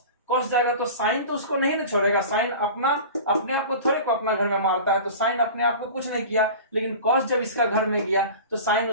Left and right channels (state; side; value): inverted; both; correlation -0.36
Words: कॉस जाएगा तो साइन तो उसको नहीं ना छोड़ेगा, साइन अपने आप को थोड़े को अपना घर में मारता है, तो साइन अपने आप को कुछ नहीं किया। लेकिन कॉस जब इसका घर में गया तो साइन